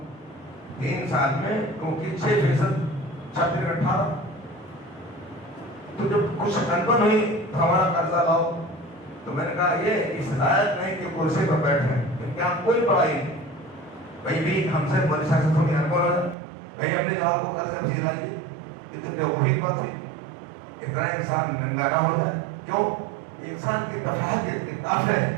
3 سال میں, کیونکہ 6% 18. تو جب کچھ انبن ہوئی تو ہمارا قرضہ لاؤ, تو میں نے کہا یہ اس لائق نہیں کہ کرسی پر بیٹھے, کیونکہ ہم کوئی پڑھائی نہیں. بھائی بھی ہم سے بڑی سیاست تھوڑی انبن ہو جائے, بھائی اپنے جواب کو قرض افزی لائیے. یہ تو وہی بات ہے, اتنا انسان ننگا نہ ہو جائے. کیوں؟ انسان کی تفاہت کی طاقت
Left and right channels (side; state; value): left; drops out; at 16.4 s